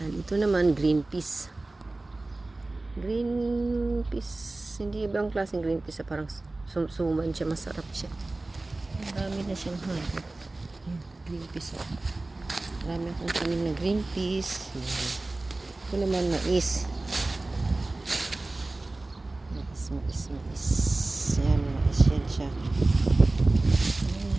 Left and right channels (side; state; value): left; quieter; 3.0 dB